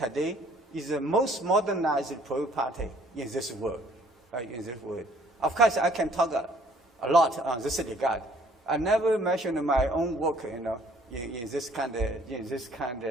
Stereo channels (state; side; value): normal; both; correlation 0.59